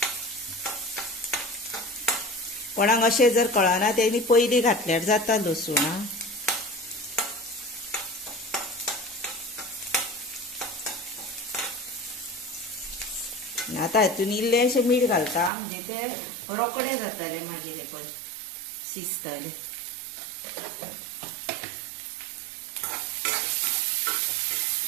कोणाक अशें जर कळना तेणी पयलीं घातल्यार जाता लसूण। आतां हितून इल्लेशें मीठ घालता, म्हणजे ते रोकडे जातले मागीर हे पळय शिजतले।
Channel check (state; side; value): drops out; left; at 15.5 s